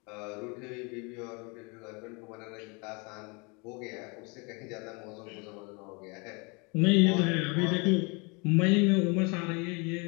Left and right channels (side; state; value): right; quieter; 30.3 dB